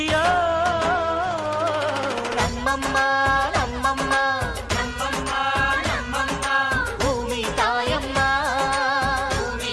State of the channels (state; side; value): identical; both; correlation 1.00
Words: ನಮ್ಮಮ್ಮ ನಮ್ಮಮ್ಮ ನಮ್ಮಮ್ಮ ನಮ್ಮಮ್ಮ ಭೂಮಿ ತಾಯಮ್ಮ, ಭೂಮಿ